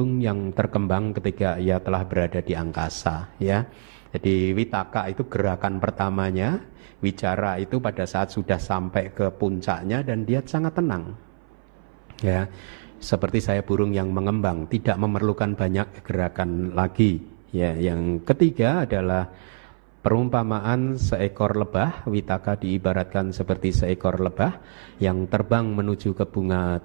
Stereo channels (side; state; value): left; silent; 59 dB below the other